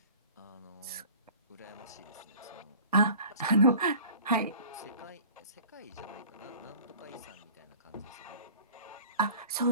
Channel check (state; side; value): inverted; both; correlation -0.45